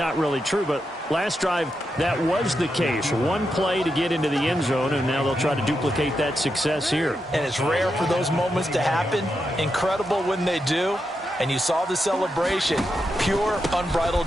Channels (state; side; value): normal; both; correlation 0.85